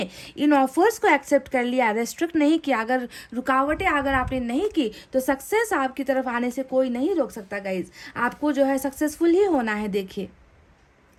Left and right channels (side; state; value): both; identical; correlation 1.00